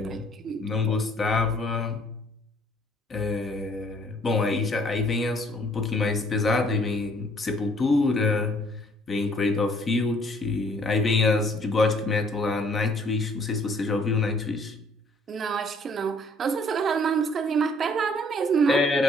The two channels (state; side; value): normal; both; correlation 0.60